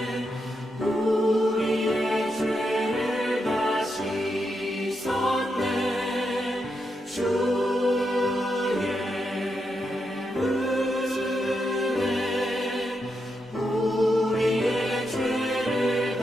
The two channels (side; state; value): both; normal; correlation 0.84